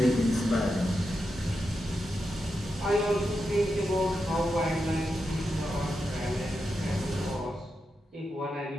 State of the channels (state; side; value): normal; both; correlation 0.87